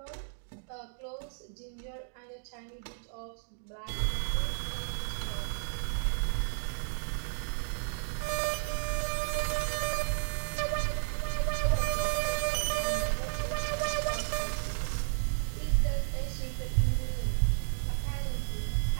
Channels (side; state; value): left; silent; digital silence